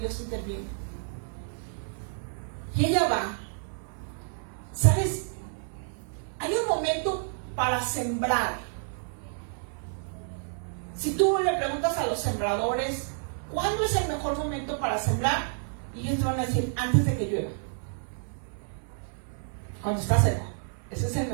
interviene. Y ella va. ¿Sabes? Hay un momento para sembrar. Si tú le preguntas a los sembradores, ¿cuándo es el mejor momento para sembrar? Y ellos te van a decir, antes de que llueva. Cuando está seco. Ese es el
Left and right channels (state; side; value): silent; left; 56 dB below the other